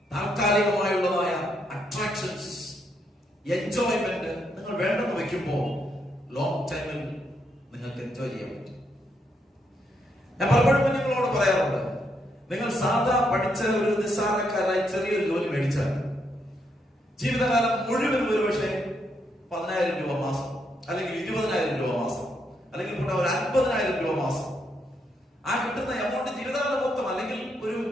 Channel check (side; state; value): both; normal; correlation 0.77